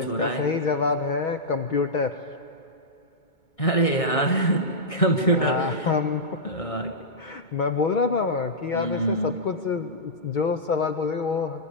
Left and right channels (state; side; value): late; right; 2.2 ms